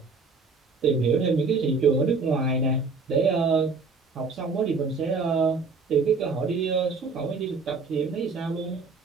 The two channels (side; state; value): left; quieter; 4.4 dB